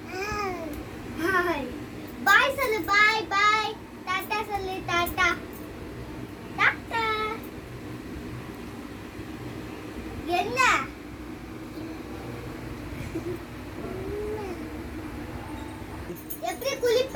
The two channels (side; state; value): both; identical; correlation 1.00